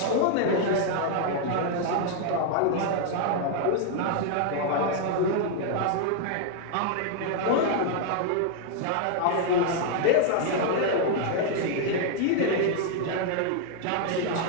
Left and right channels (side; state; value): both; different; correlation 0.00